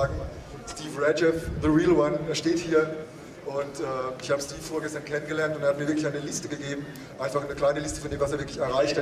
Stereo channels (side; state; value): both; identical; correlation 1.00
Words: Steve Radjeff, the real one, er steht hier und ich habe Steve vorgestern kennengelernt und er hat mir wirklich eine Liste gegeben, einfach eine kleine Liste von dem, was er wirklich erreicht